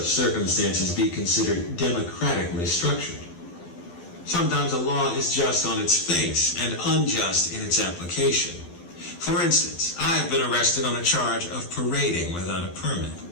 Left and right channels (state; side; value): late; right; 12 ms